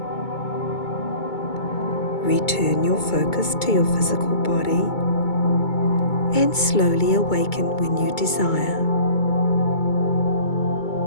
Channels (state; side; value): late; right; 2.2 ms